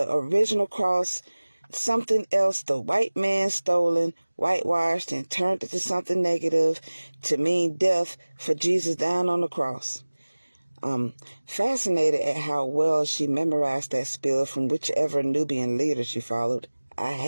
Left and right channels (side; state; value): both; inverted; correlation -1.00